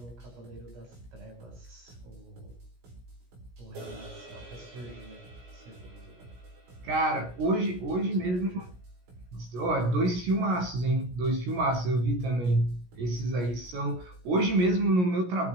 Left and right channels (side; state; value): left; late; 17 ms